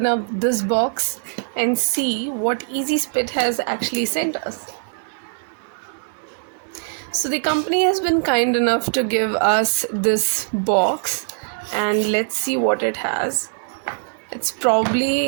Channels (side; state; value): left; silent; digital silence